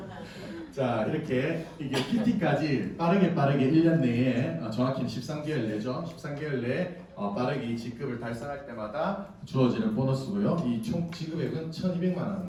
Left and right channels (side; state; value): both; identical; correlation 1.00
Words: 자, 이렇게 이게 PT까지 빠르게 1년 내에 정확히는 13개월 내죠. 13개월 내에 빠르게 이 직급을 달성할 때마다 주어지는 보너스고요. 이 총 지급액은 1,200만